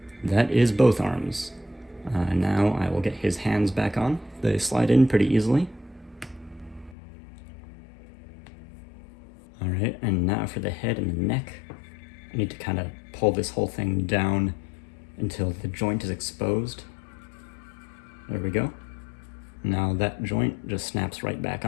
That is both arms. Now I will get his hands back on. They slide in pretty easily. Alright, and now for the head and the neck. I need to kind of pull this whole thing down until the joint is exposed. There we go. Now that joint just snaps right back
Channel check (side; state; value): right; drops out; at 7.0 s